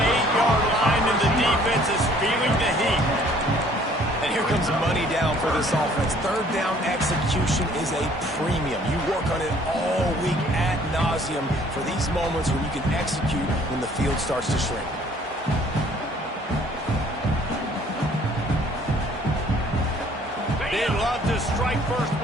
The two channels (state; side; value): normal; both; correlation 0.58